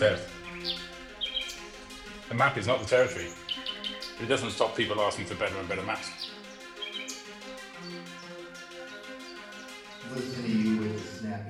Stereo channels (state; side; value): identical; both; correlation 1.00